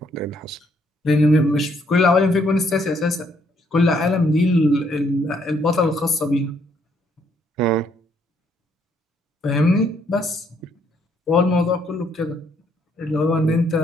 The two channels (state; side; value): normal; both; correlation 0.69